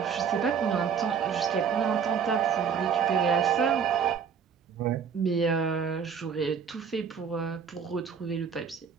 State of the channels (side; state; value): left; quieter; 6.8 dB